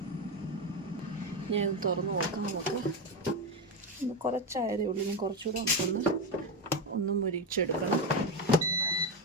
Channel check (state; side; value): normal; both; correlation 0.13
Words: ഞാൻ ഇത് തുറന്ന് നോക്കാം. നമുക്ക് ഒന്ന് കുറച്ചായതേ ഉള്ളൂ. ഞാൻ കുറച്ചുകൂടെ ഒന്ന് മുരിച്ചെടുക്കണം.